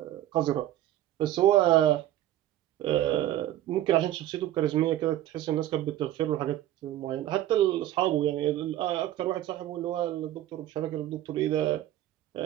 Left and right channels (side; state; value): left; quieter; 13.3 dB